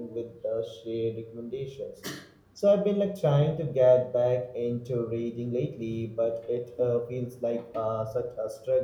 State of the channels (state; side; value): identical; both; correlation 1.00